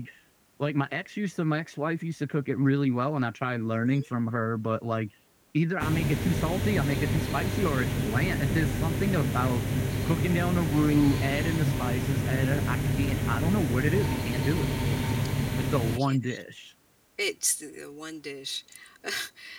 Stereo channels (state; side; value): identical; both; correlation 1.00